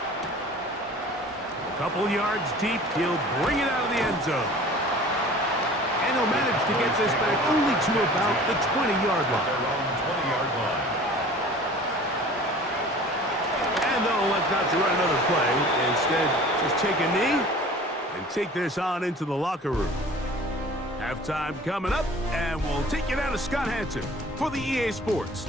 A couple yards deep, he'll bring it out of the end zone. And he'll manage to get this back only to about the 20-yard line. And they'll elect not to run another play. Instead, just take a knee and take this on into the locker room. Halftime coming up, and we'll take you down to Scott Hansen for the EA Sports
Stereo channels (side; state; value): both; normal; correlation 0.45